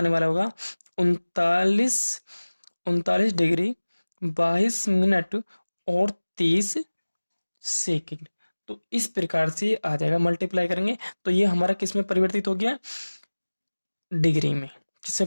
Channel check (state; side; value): inverted; both; correlation -1.00